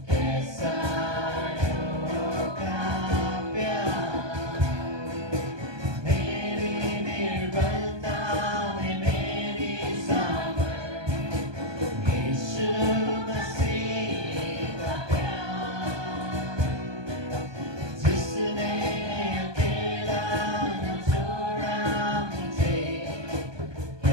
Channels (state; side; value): late; left; 1.2 ms